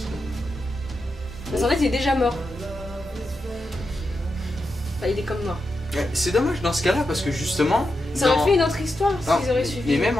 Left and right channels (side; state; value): both; normal; correlation 0.87